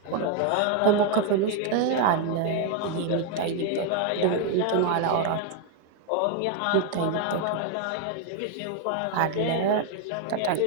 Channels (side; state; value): both; different; correlation 0.01